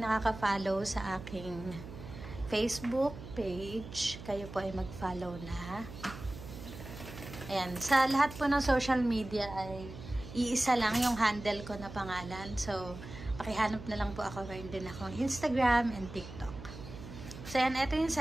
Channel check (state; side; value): noise; right; hum, 13 dB below the sound